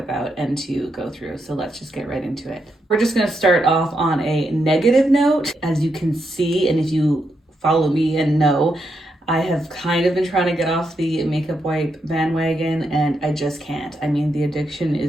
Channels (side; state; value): both; normal; correlation 0.82